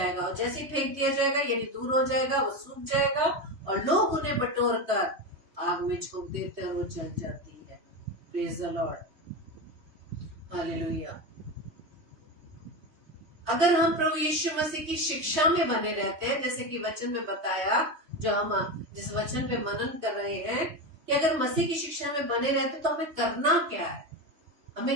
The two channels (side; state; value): left; late; 3.2 ms